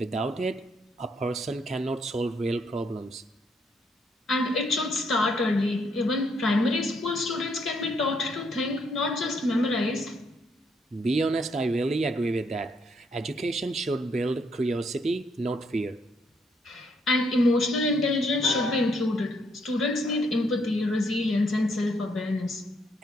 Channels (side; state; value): both; normal; correlation 0.72